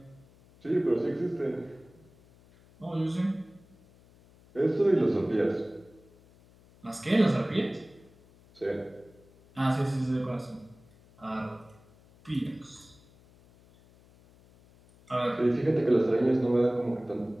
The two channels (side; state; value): left; noise; hum, 27 dB below the sound